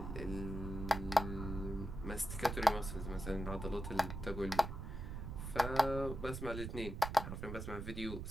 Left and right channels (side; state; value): right; noise; rumble, 6 dB below the sound